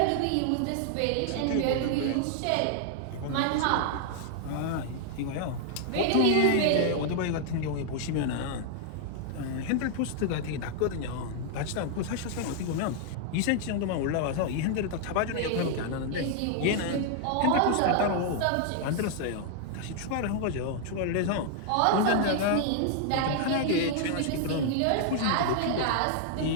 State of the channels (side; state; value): both; different; correlation -0.01